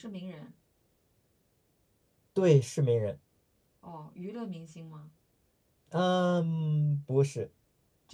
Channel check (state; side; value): identical; both; correlation 1.00